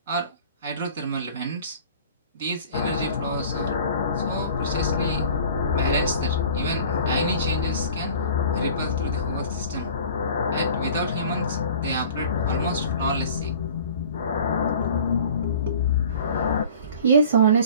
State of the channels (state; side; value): inverted; both; correlation -0.45